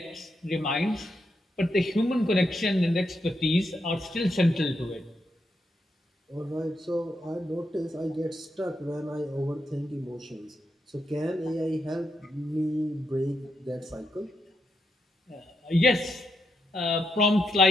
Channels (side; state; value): both; normal; correlation 0.82